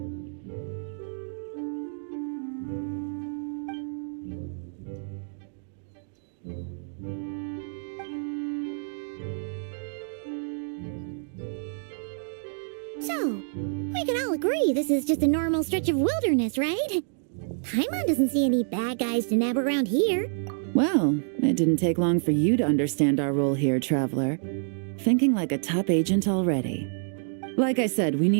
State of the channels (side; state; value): left; silent; digital silence